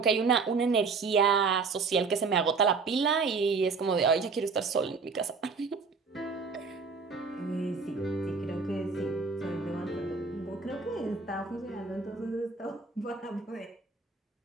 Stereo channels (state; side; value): quieter; left; 4.8 dB